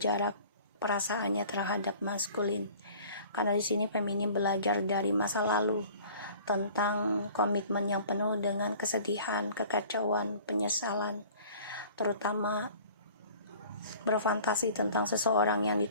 perasaannya terhadap maskulin. Karena di sini feminim belajar dari masa lalu tentang komitmen yang penuh dengan kesedihan, kekacauan, penyesalan, terutama berfantasi tentang seseorang yang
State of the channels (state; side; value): inverted; both; correlation -0.48